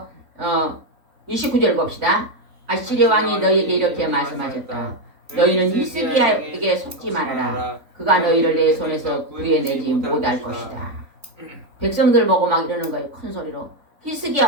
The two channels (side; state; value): left; late; 3.5 ms